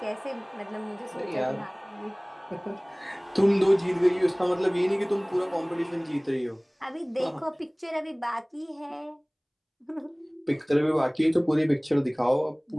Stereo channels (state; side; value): identical; both; correlation 1.00